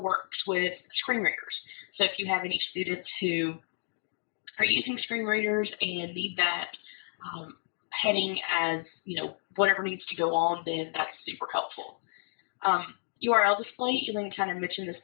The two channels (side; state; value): right; silent; digital silence